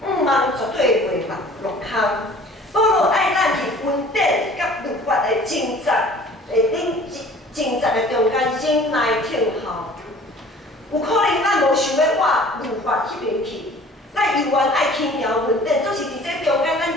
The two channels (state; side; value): normal; both; correlation 0.49